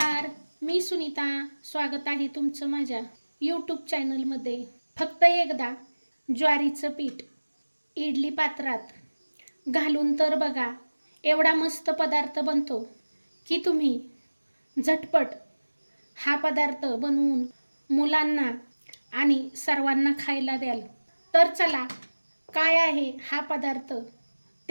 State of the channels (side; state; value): both; inverted; correlation -1.00